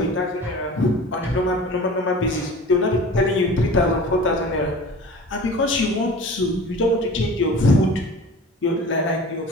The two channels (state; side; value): normal; both; correlation 0.40